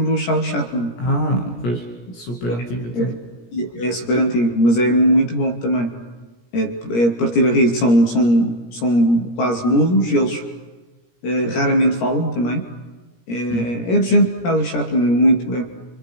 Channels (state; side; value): late; right; 17 ms